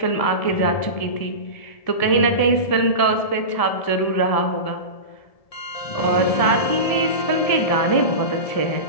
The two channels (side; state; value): right; late; 1.7 ms